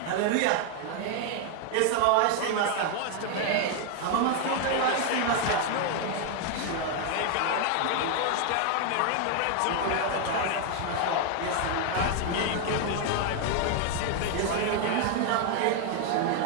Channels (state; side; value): different; both; correlation 0.01